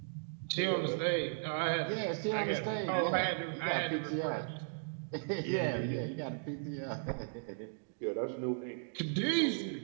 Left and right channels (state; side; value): silent; left; digital silence